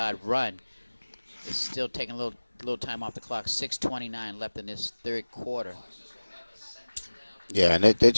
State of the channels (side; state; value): both; inverted; correlation -1.00